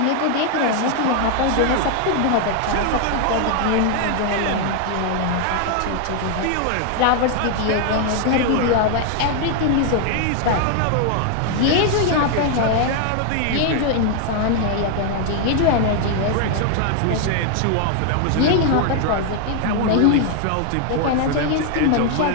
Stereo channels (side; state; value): both; different; correlation 0.00